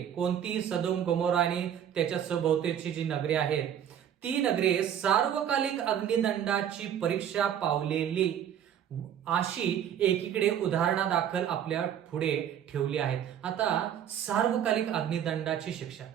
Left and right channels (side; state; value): left; quieter; 9.5 dB